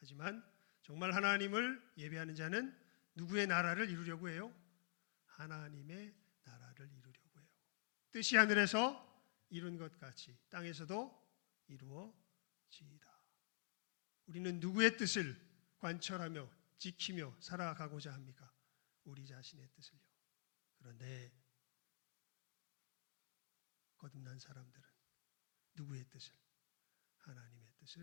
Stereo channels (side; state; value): right; silent; digital silence